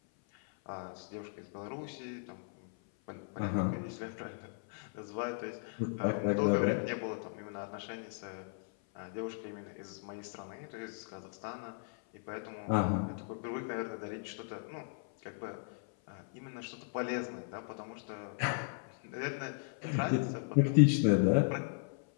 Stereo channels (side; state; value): right; silent; 53 dB below the other